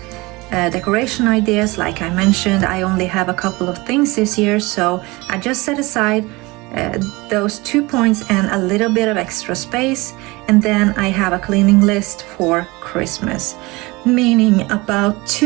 decoration ideas. Like I mentioned, I only have a couple of things this year, so I just set aside those 2 points and a little bit of extra space, and then I have a cleaning list for Christmas, meaning about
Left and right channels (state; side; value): quieter; left; 23.2 dB